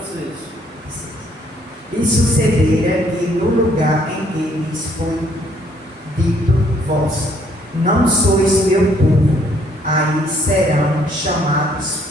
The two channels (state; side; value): normal; both; correlation 0.66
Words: E sucedera que no lugar em que lhes foi dito: vós não sois meu povo, aí serão chamados